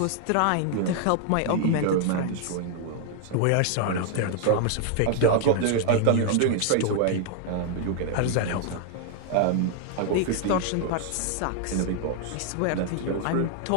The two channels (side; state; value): both; different; correlation 0.00